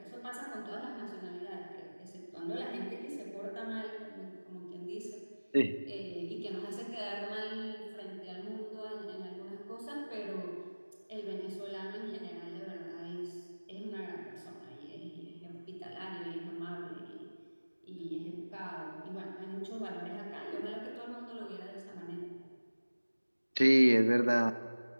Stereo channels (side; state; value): both; inverted; correlation -1.00